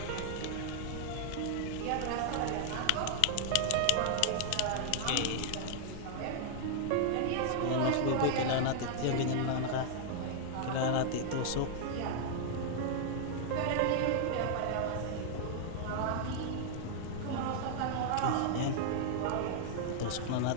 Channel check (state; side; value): different; both; correlation -0.01